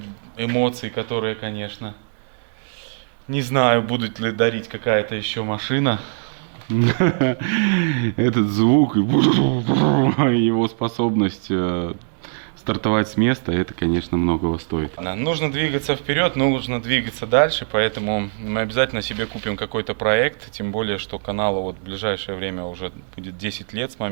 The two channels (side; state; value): left; silent; 65 dB below the other